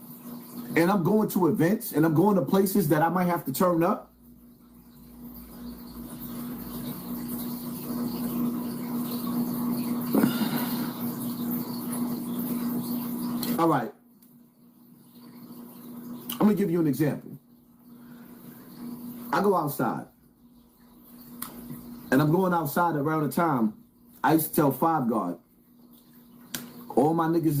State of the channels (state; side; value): identical; both; correlation 1.00